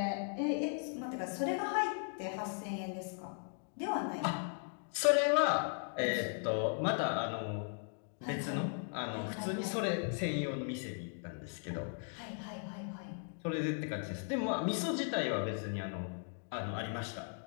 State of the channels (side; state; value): right; silent; 53 dB below the other